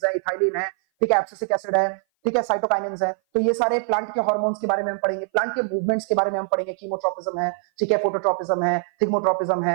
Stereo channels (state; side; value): silent; left; 58 dB below the other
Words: है, इथाइलिन है, ठीक है, एब्सिसिक एसिड है, ठीक है, साइटोकाइनिन्स है। तो ये सारे प्लांट के हार्मोन्स के बारे में हम पढ़ेंगे, प्लांट के मूवमेंट्स के बारे में हम पढ़ेंगे, कीमोट्रोपिज्म है, ठीक है, फोटोट्रोपिज्म है, थिग्मोट्रोपिज्म